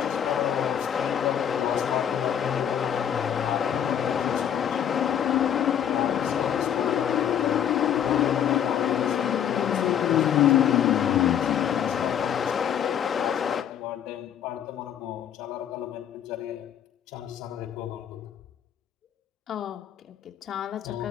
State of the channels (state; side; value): quieter; right; 9.3 dB